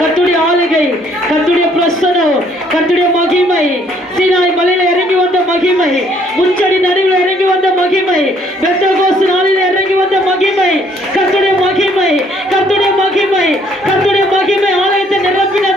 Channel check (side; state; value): both; normal; correlation 0.64